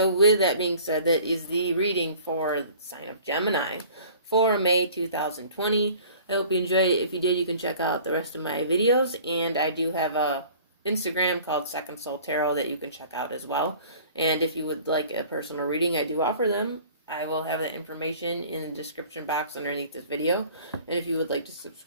with that being said, that is the reading for the sign of Gemini for May 2020. I hope you enjoyed it. If you did, you can check out the rest of my videos. And I do have a Instagram called Second Soul Tarot that you can check out as well. And if you would like a personal reading, I do offer them. I will have that information in the description box underneath this video. And if you would like to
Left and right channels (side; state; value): both; inverted; correlation -0.48